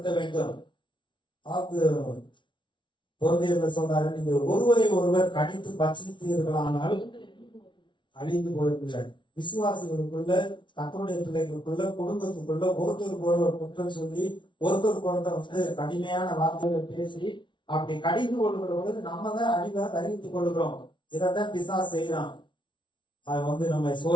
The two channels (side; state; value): right; late; 0.24 ms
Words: வேண்டும். பொருந்தியர்கள் சொல்றாரு, நீங்கள் ஒருவரை ஒருவர் கடித்து பட்சித்தீர்களானால் அழிந்து போயிருக்கிறார். விசுவாசிகளுக்குள்ள, கர்த்தருடைய பிள்ளைகளுக்குள்ள, குடும்பத்துக்குள்ள ஒருத்தருக்கு ஒருவர் குற்றம் சொல்லி ஒருத்தருக்கு ஒருத்தர் கடுமையான வார்த்தைகளை பேசி அப்படி கடிந்து கொள்கிற பொழுது நம்ம தான் அழிவை அறிவித்துக் கொள்கிறோம். இதைத்தான் பிசாசு செய்யறான். அது நம்ம